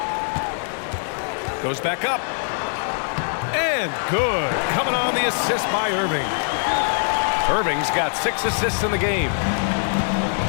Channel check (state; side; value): silent; right; digital silence